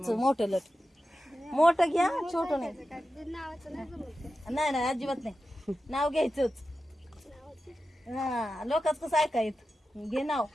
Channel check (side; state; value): both; normal; correlation 0.92